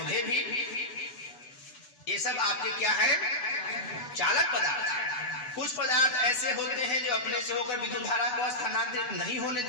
भी, ये सब आपके क्या है? चालक पदार्थ है। कुछ पदार्थ ऐसे होते हैं जो अपने से होकर विद्युत धारा को स्थानांतरित नहीं होने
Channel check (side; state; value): right; late; 8.0 ms